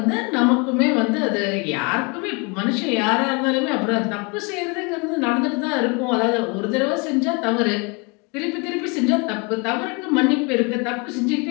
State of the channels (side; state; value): right; quieter; 30.8 dB